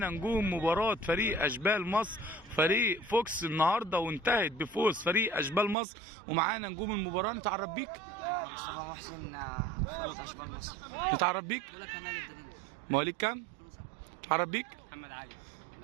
نجوم مباراه فريق اشبال مصر فريق فوكس النهارده، وانتهت بفوز فريق اشبال مصر. ومعانا نجوم المباراه. نتعرف بيك؟ مصطفى محسن، فريق اشبال مصر. نتعرف بيك؟ مواليد كام؟ نتعرف بيك؟ محمد علي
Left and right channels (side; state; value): left; drops out; at 5.8 s